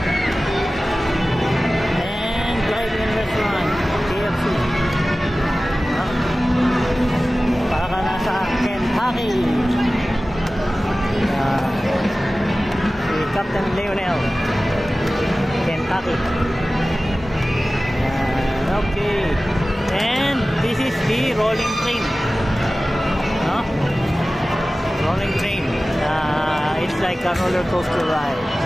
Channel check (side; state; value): both; normal; correlation 0.96